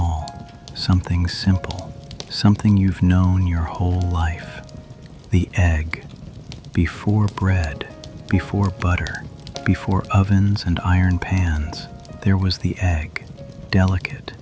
something simple, something you've known your whole life. The egg. Before bread, before butter, before ovens and iron pans, there was the egg, delicate,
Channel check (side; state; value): both; identical; correlation 1.00